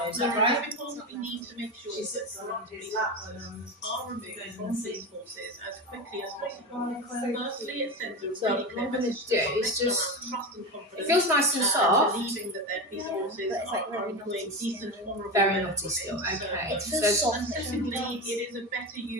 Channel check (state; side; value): normal; both; correlation 0.20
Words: is that right? We need to make sure that are removed from these forces as quickly as possible. Firstly, it sends a really clear message to It's just, trust and confidence. it feels nice and soft. Believing that their police forces are employing decent, honourable. Very naughty still, okay. It feels soft. And secondly, it is a better